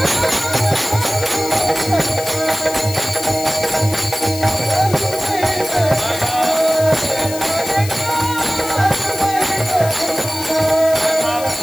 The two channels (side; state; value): left; noise; hiss, 11 dB below the sound